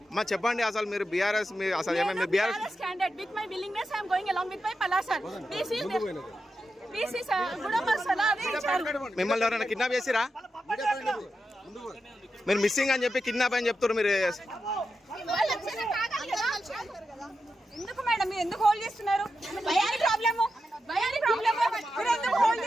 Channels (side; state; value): both; normal; correlation 0.89